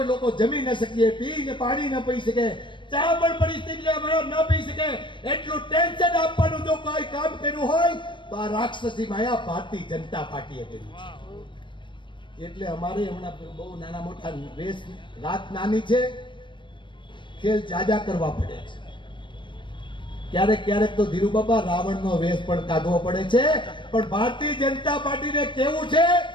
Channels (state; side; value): late; right; 0.23 ms